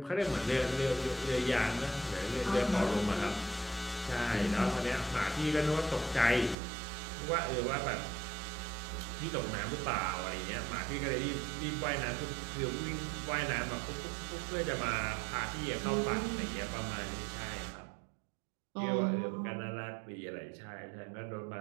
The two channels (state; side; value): drops out; left; at 6.6 s